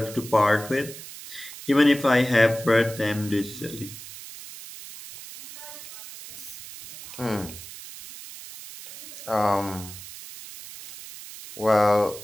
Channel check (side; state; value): right; noise; hiss, 14 dB below the sound